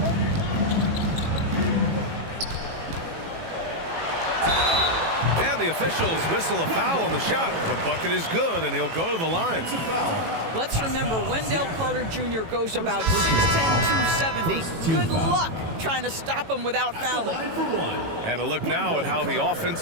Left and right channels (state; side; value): late; left; 18 ms